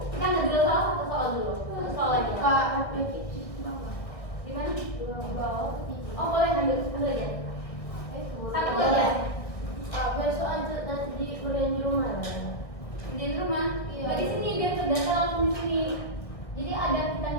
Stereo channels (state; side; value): late; right; 1.6 ms